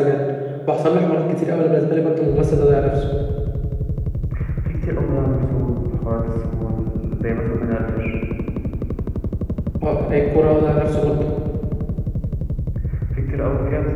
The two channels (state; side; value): identical; both; correlation 1.00